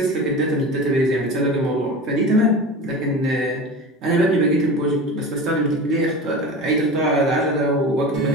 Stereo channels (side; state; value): both; normal; correlation 0.31